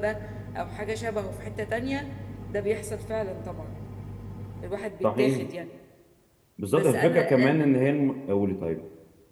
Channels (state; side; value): identical; both; correlation 1.00